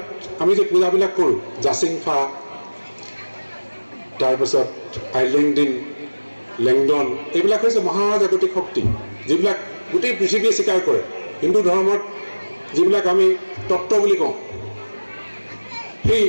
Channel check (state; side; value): inverted; both; correlation -1.00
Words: আমি যে পূজাবিলাক কৰোঁ জাচিংফা তাৰপিছত আইলেংডিন লেংডন এইবিলাক হৈছে মহাজাগতিক শক্তি যিবিলাক গোটেই পৃথিৱীয়ে স্বীকাৰ কৰে। হিন্দু ধৰ্মত যিবিলাক আমি তত্ত্ব বুলি কওঁ সেই